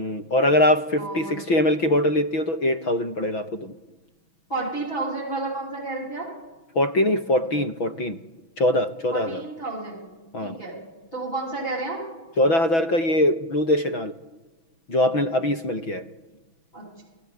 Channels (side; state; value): right; late; 6.1 ms